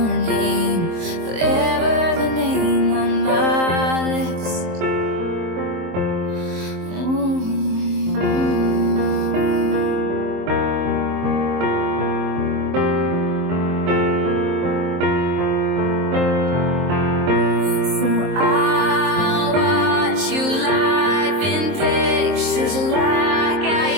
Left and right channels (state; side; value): late; left; 23 ms